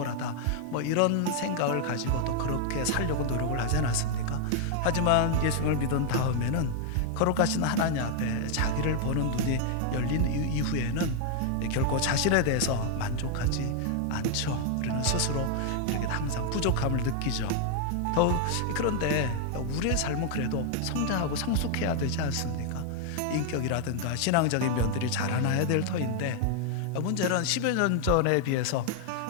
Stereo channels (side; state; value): both; different; correlation 0.00